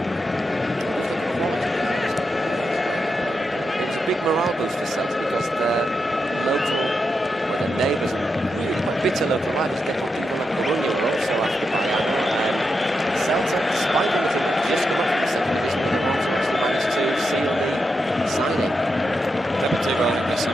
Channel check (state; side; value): normal; both; correlation 0.86